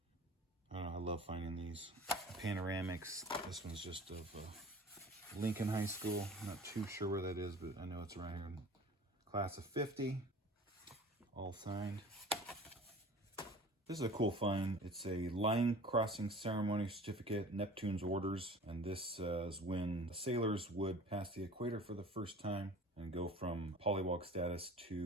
I don't know, I love finding these panoramics. This one's just of Lincoln High School. I'm not too sure where that is, but I know it's right here in class of 50. All signed. This is a cool find. It's a line crossing ceremony certificate, Neptune's orders. And this is when the sailors would pass the equator for the first time and go from polywog status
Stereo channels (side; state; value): both; normal; correlation 0.43